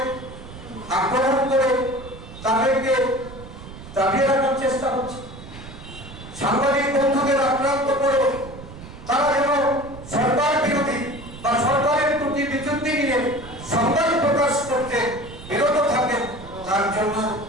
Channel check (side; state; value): right; noise; rumble, 15 dB below the sound